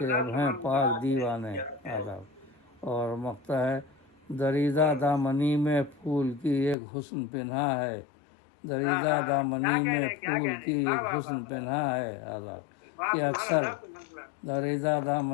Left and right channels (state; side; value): drops out; right; at 6.8 s